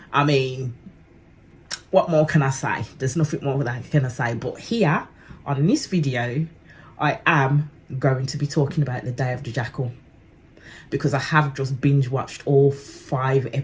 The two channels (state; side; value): identical; both; correlation 1.00